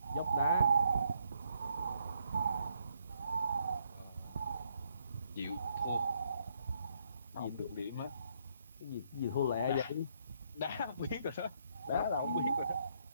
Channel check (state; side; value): inverted; both; correlation -0.72